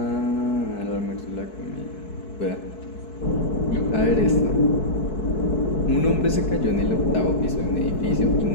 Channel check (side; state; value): right; late; 4.6 ms